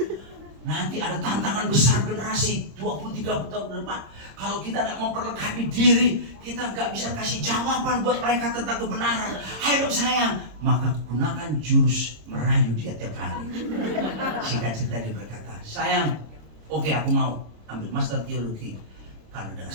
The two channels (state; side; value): late; left; 26 ms